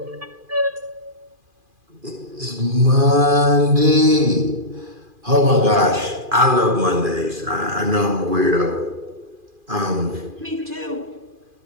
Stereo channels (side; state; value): left; late; 2.4 ms